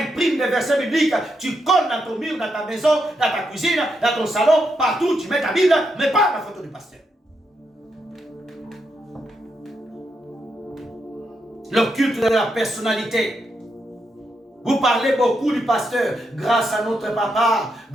des versets bibliques. Tu colles dans ton mur, dans ta maison, dans ta cuisine, dans ton salon. Partout, tu mets ta Bible, mais pas la photo du pasteur. Le culte de la personnalité. Vous parlez beaucoup du pasteur. Grâce à notre papa,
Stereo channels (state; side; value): normal; both; correlation 0.82